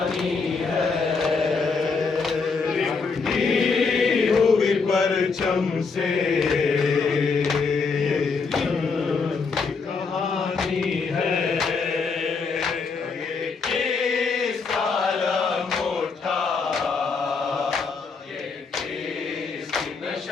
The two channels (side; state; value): right; quieter; 4.8 dB